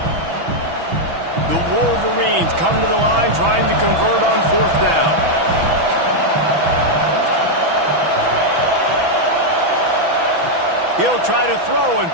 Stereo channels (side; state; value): left; late; 6.1 ms